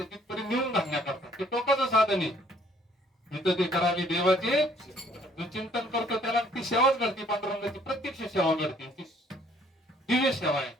तिथपर्यंत मिळून घालण्याकरता ते टोकाचं साधन आहे. इथं ते करावी देवाचे. जो चिंतन करतो त्याला ती सेवाच घडते, पांडुरंगाची प्रत्यक्ष सेवा घडते, ती दिव्य सेवा आहे.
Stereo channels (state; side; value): normal; both; correlation 0.61